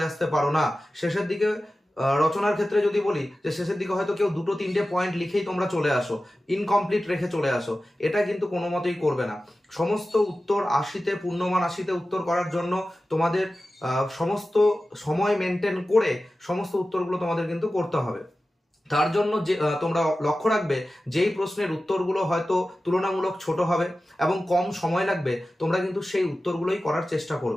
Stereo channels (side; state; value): both; normal; correlation 0.95